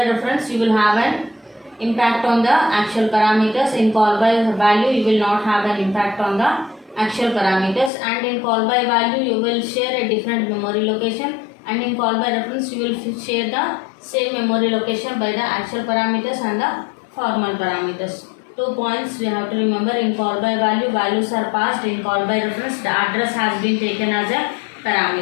reference, you will have an impact on the actual parameters. In call by value, you will not have an impact on the actual parameters. And in call by value, you will share a different memory location, and in call by reference, you will share the same memory location by the actual parameters and the formal parameters. 2 points we have to remember. In call by value, values are passed. In call by reference, the address has been taken as a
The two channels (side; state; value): right; drops out; at 7.9 s